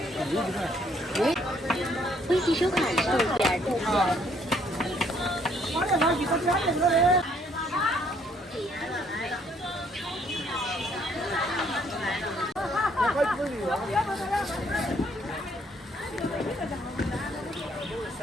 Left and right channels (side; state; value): both; normal; correlation 0.66